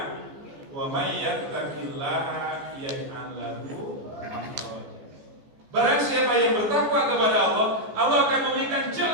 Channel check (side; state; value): left; late; 14 ms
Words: wa may yattaqillaha yaj'al lahu makhraja. Barang siapa yang bertakwa kepada Allah, Allah akan memberikan